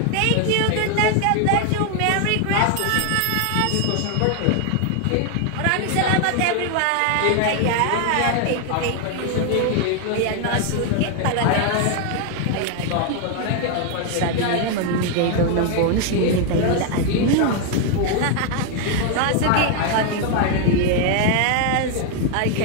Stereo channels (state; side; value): different; both; correlation 0.01